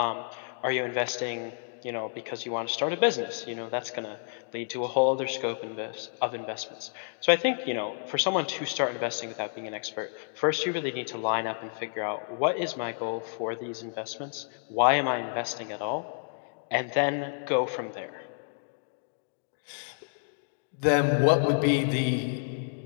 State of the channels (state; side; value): silent; right; digital silence